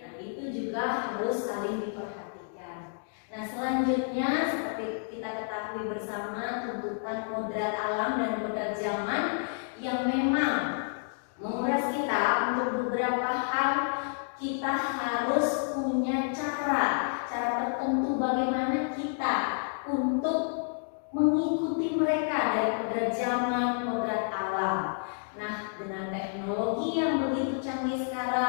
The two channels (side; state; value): right; silent; digital silence